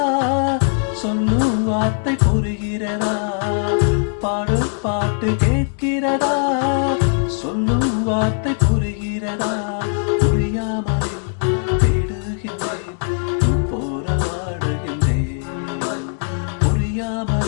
சொல்லும் வார்த்தை புரிகிறதா பாடும் பாட்டு கேட்கிறதா சொல்லும் வார்த்தை புரிகிறதா புரியாமல் தேடுகின்றேன் போராடுகின்றேன்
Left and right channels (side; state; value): right; silent; 66 dB below the other